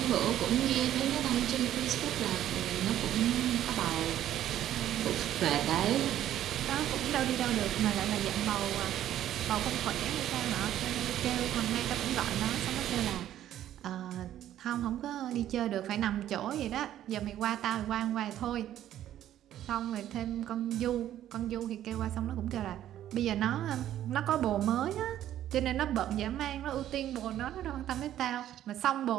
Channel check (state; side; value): quieter; left; 12.0 dB